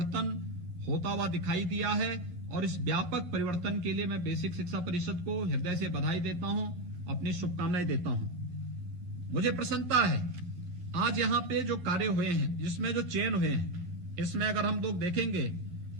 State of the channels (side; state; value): left; late; 12 ms